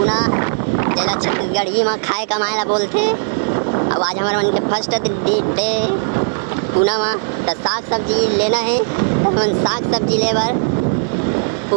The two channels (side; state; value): left; silent; digital silence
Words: जिला छत्तीसगढ़ ही में खाए कमाए बोलते। अब आज हमारे मन के फर्स्ट डे पुणे में तो साग सब्जी लेना है। तो हम साग सब्जी ले बर